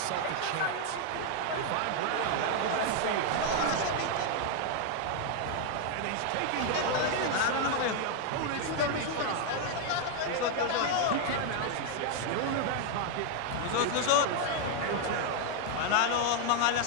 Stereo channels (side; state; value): both; different; correlation 0.00